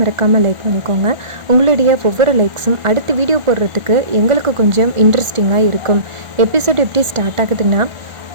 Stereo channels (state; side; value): late; left; 1.4 ms